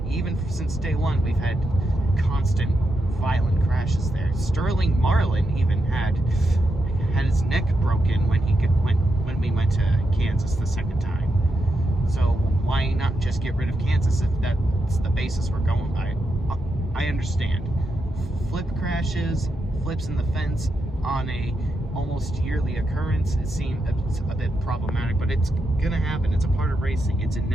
Even since day one, we've had constant violent crashes there. Sterling Marlin even had his neck broken when we went to Kansas the second time. So why not just get rid of Kansas if that's the basis we're going by? I understand. Flip crashes, flips in the fence on a almost yearly occurrence, it seemed a bit problematic, but it's gonna happen. It's a part of racing. It's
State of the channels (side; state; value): both; normal; correlation 0.85